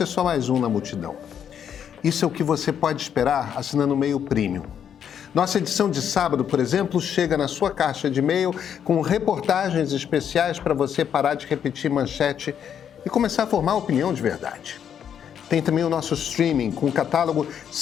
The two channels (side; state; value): right; quieter; 8.6 dB